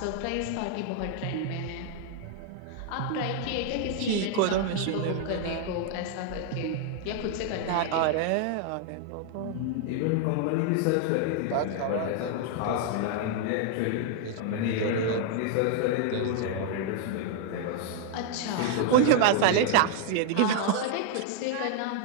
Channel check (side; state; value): both; different; correlation 0.00